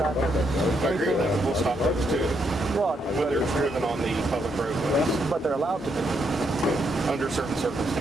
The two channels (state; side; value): normal; both; correlation 0.77